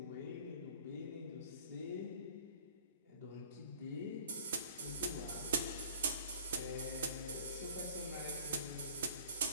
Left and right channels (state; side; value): inverted; both; correlation -0.49